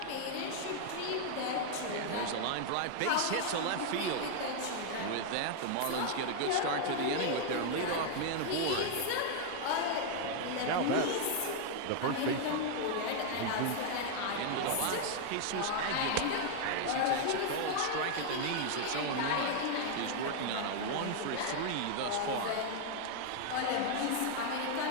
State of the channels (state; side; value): different; both; correlation 0.00